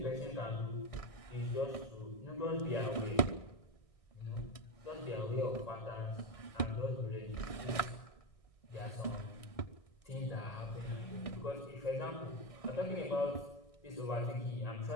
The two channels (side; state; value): right; late; 1.6 ms